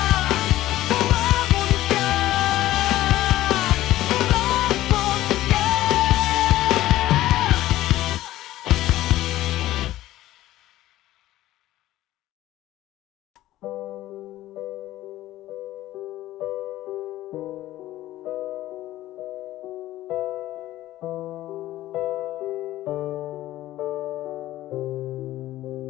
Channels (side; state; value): right; quieter; 15.1 dB